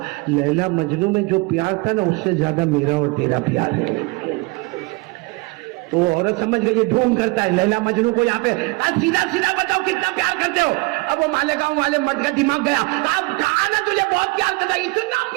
لیلا مجنوں میں جو پیار تھا نا اس سے زیادہ میرا اور تیرا پیار ہے. تو عورت سمجھ گئی یہ ڈھونگ کرتا ہے لیلا مجنوں کو یہاں پہ, سیدھا سیدھا بتاؤ کتنا پیار کرتے ہو. اب وہ مالیگاؤں والے مرد کا دماغ گیا, کہا نا تجھے بہت پیار کرتا, اتنا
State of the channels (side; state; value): left; quieter; 26.2 dB